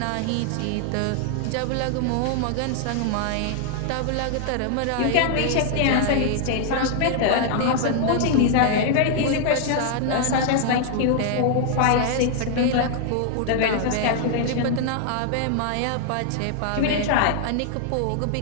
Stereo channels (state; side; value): different; both; correlation 0.00